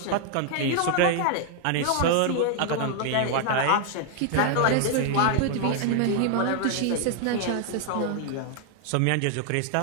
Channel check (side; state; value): both; different; correlation 0.00